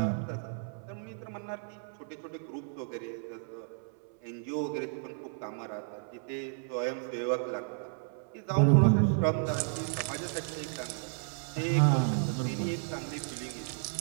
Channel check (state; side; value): silent; left; 56 dB below the other